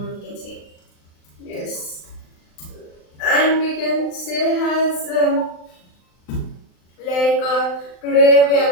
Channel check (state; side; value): late; right; 39 ms